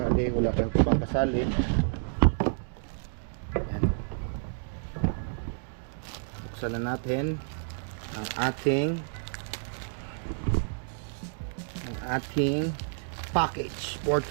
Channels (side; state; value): left; silent; digital silence